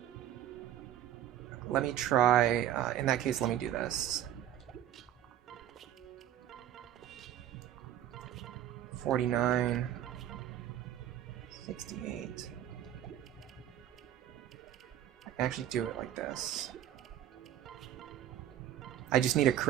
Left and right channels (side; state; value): left; quieter; 11.5 dB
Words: Let me try... in that case, let me do this. 49. 68. I can actually do it like this. I just need a